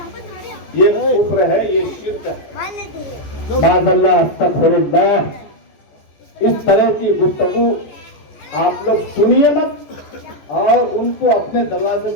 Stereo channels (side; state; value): right; late; 14 ms